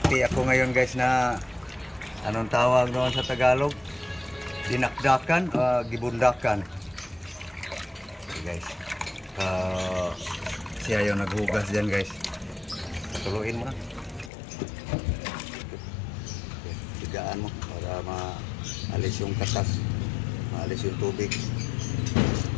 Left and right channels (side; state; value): right; drops out; at 14.3 s